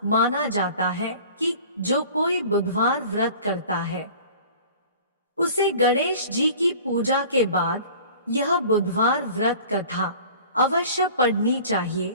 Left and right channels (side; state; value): both; inverted; correlation -0.45